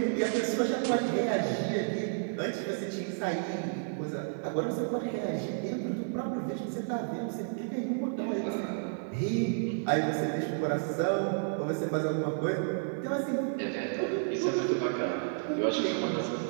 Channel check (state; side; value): silent; left; 57 dB below the other